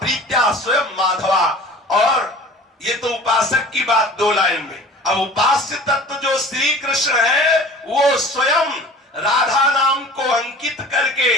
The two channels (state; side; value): normal; both; correlation 0.43